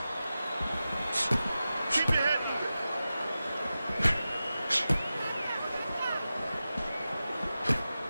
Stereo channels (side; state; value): both; inverted; correlation -0.94